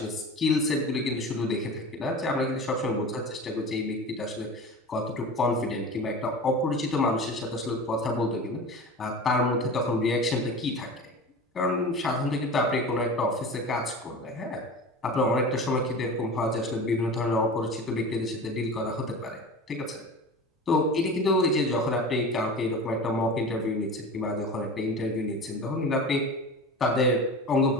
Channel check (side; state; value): both; normal; correlation 0.33